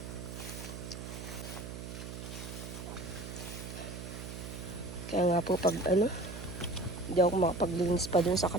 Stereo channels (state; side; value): noise; right; hum, 9 dB below the sound